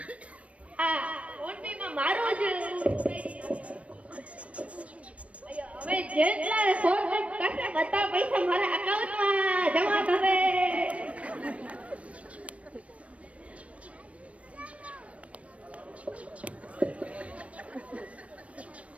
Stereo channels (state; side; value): late; left; 0.064 ms